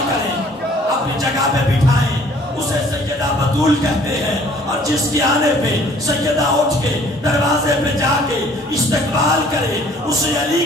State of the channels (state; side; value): normal; both; correlation 0.56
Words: کریں، اپنی جگہ پہ بٹھائیں، اسے سیدہ بطول کہتے ہیں. اور جس کی آنے پہ سیدہ اٹھ کے دروازے پہ جا کے استقبال کرے اسے علی